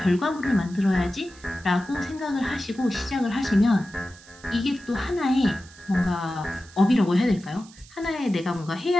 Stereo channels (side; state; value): right; noise; hiss, 23 dB below the sound